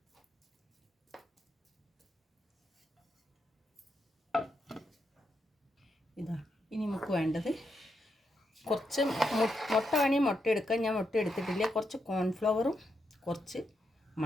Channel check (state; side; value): normal; both; correlation 0.82